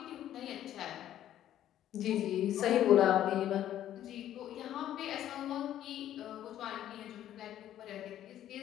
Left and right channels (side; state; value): right; quieter; 11.8 dB